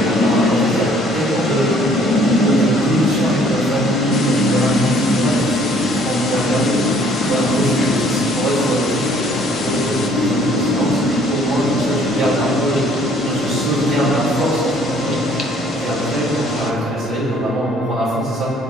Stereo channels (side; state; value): both; normal; correlation 0.59